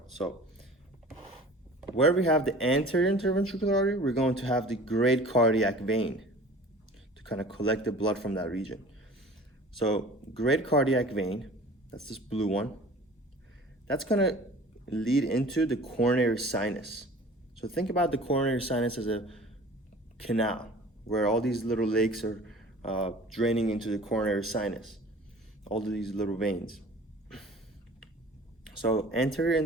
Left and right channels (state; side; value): normal; both; correlation 0.44